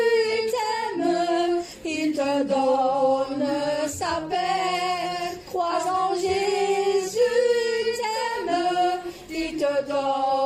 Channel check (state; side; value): identical; both; correlation 1.00